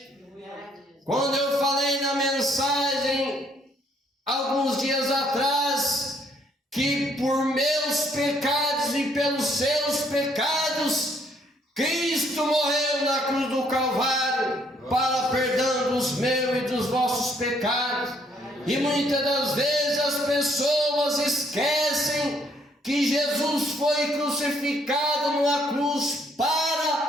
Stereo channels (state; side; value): normal; both; correlation 0.67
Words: Quando eu falei na mensagem, alguns dias atrás, que por meus pecados e pelos seus pecados, Cristo morreu na cruz do Calvário, para perdão dos meus e dos vossos pecados. E muitas das vezes as pessoas esquecem que Jesus foi crucificado numa cruz